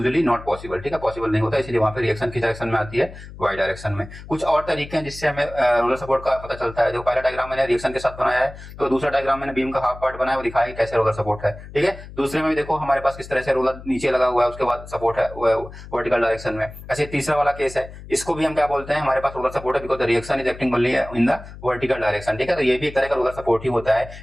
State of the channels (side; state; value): left; noise; hum, 15 dB below the sound